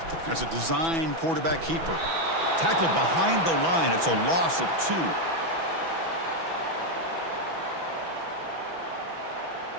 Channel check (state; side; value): late; left; 6.1 ms